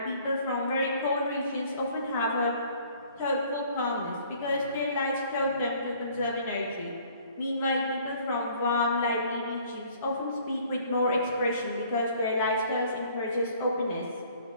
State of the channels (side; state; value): both; inverted; correlation -0.56